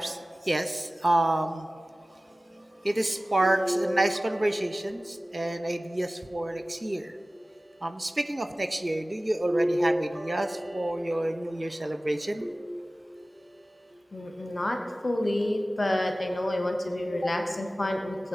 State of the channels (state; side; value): normal; both; correlation 0.97